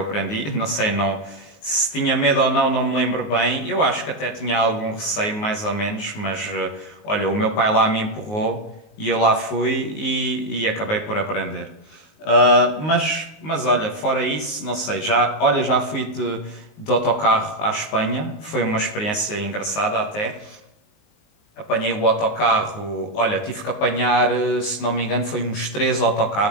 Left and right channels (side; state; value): right; late; 19 ms